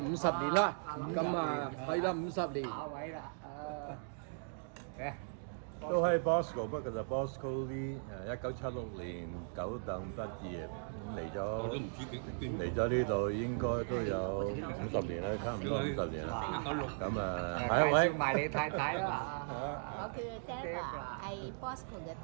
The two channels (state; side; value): silent; left; digital silence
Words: 年啦。咁啊，係啦50年。下位啦，都係 Bosco， 不過就 Bosco Lee， 1976年九等畢業，嚟咗呢度應該都有50年啦，差唔多50年啦。咁啊，下一位。埋你太太啦。我叫 Deva， 係 Bosco 嘅